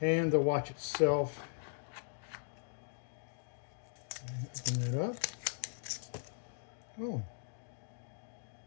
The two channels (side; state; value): right; silent; digital silence